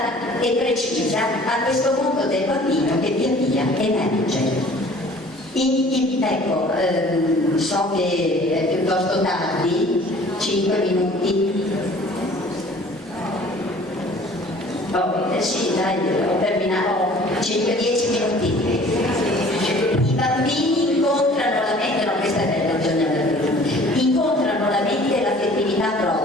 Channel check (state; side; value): normal; both; correlation 0.50